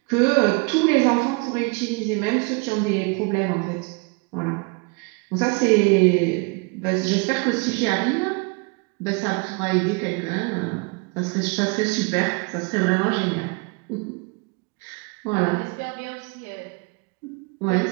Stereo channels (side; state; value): left; quieter; 30.7 dB